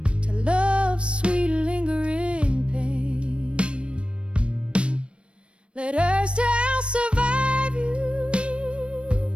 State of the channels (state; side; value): late; left; 0.059 ms